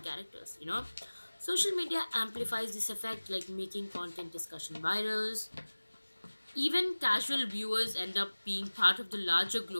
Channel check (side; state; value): both; inverted; correlation -1.00